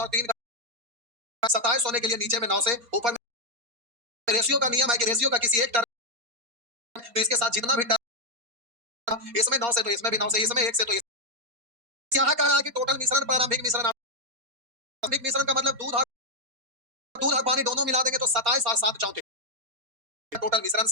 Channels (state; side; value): late; left; 4.3 ms